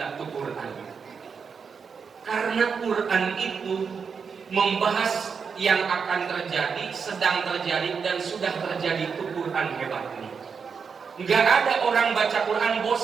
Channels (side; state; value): left; quieter; 5.9 dB